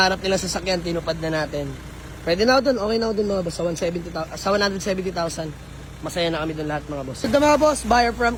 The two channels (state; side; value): identical; both; correlation 1.00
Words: nila sa sasakyan, tinupad na natin. Pwede na ako dun, okay na ako dun mga boss, sa 170,000. Masaya na kami dun lahat mga boss. Ito mga boss, buyer